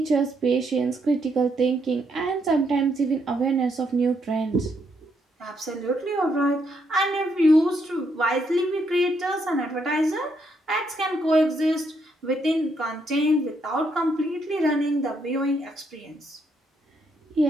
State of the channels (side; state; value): both; normal; correlation 0.75